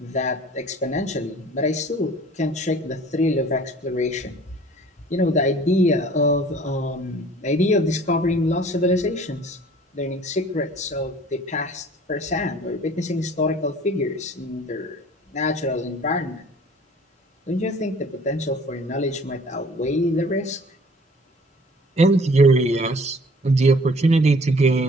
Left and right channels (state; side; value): normal; both; correlation 0.50